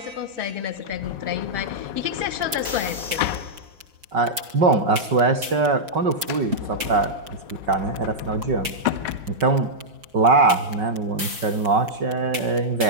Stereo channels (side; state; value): left; late; 5.3 ms